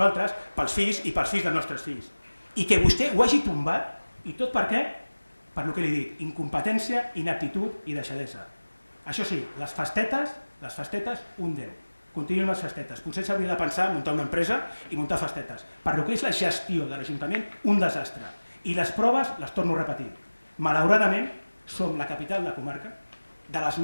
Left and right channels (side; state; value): both; inverted; correlation -1.00